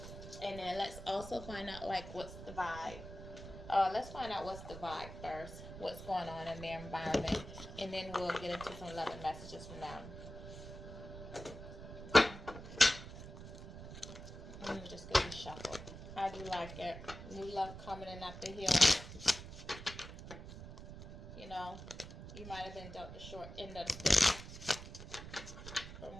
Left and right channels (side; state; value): right; noise; rumble, 12 dB below the sound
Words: And then let's also find out, like, what's the vibe. Let's find out what's the vibe first. What's going on in their environment. And then we'll get into some love and messages from them. Just get you shuffled. How do you like it? New love coming in after healing. You know, you might have been dealt the short end of the stick from